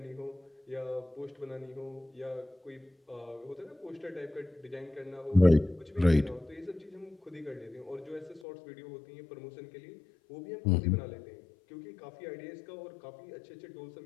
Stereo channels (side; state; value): right; drops out; at 8.4 s